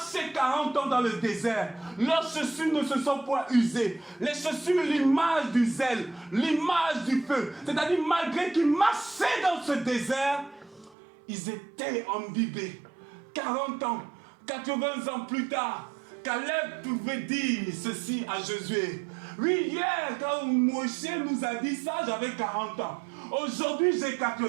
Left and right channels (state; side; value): drops out; left; at 11.0 s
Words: 40 ans dans le désert. Leurs chaussures ne se sont point usées. Les chaussures, l'image du zèle, l'image du feu. C'est-à-dire, malgré qu'ils marchaient dans ce désert, ils étaient imbibés. 40 ans, 80 ans plus tard, Caleb pouvait dire ceci à Josué. Oui, hier, quand Moshe nous a dit ça, j'avais 40 ans. Aujourd'hui, j'ai